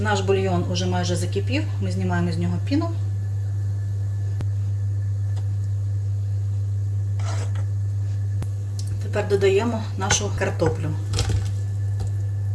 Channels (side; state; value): both; identical; correlation 1.00